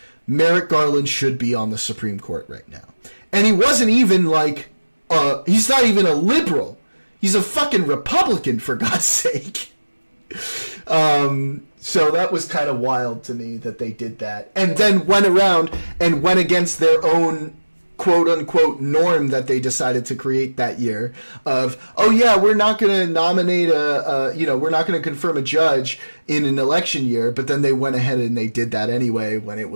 Merrick Garland should be on the Supreme Court right now. And he wasn't even like, he's not even a liberal. He's a fucking Republican, for God's sake. So that was kind of wild to me that they did that. And then went around and went against their own quote-unquote norm that they decided to create that year of, oh yeah, we're not going to nominate we're not going to confirm a judge in an election year, but then they went ahead and they did that anyway when it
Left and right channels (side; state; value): both; inverted; correlation -1.00